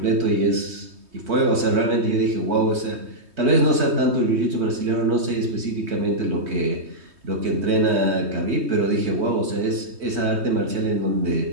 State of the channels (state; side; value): late; left; 3.2 ms